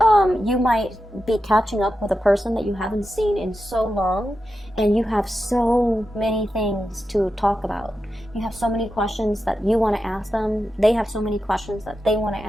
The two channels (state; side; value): normal; both; correlation 0.89